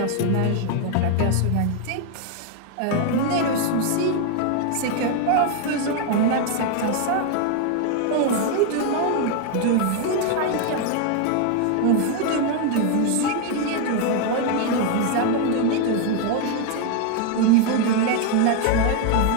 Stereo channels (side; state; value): both; different; correlation 0.00